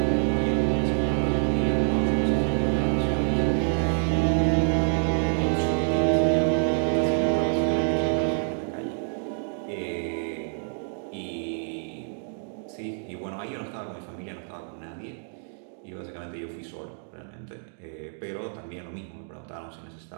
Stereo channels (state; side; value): silent; left; digital silence